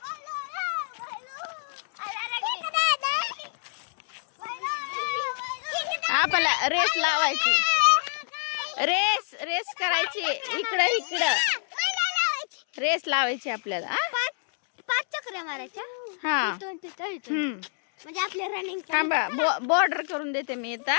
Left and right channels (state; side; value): silent; right; 60 dB below the other